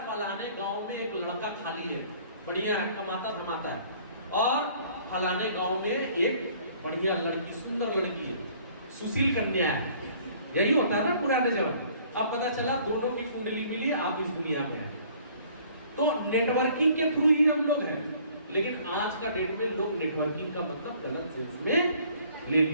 फलाने गांव में एक लड़का खाली है, बढ़िया है, कमाता धमाता है, और फलाने गांव में एक बढ़िया लड़की, सुंदर लड़की है, सुशील कन्या है। यही होता है ना पुराने जमाने। अब पता चला दोनों की कुंडली मिली, आप इस दुनिया में हैं। तो नेटवर्किंग के थ्रू ही हम लोग हैं, लेकिन आज का डेट में लोग नेटवर्किंग का मतलब गलत सेंस में ले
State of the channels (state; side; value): inverted; both; correlation -0.56